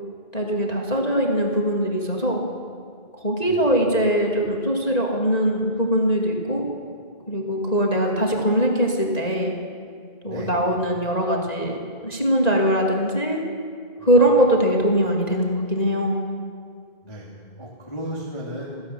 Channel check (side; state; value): right; late; 1.9 ms